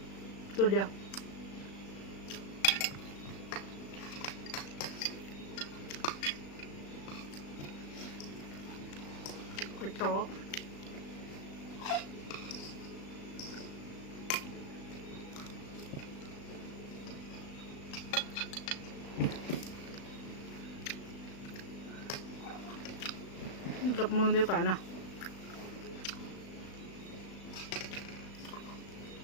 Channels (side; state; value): right; late; 36 ms